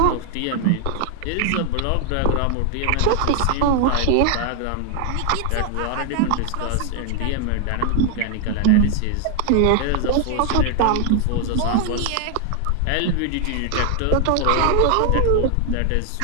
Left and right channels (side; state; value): both; different; correlation 0.00